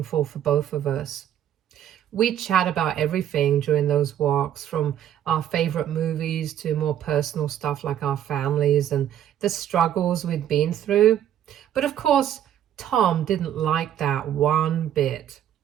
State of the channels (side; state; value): left; quieter; 10.7 dB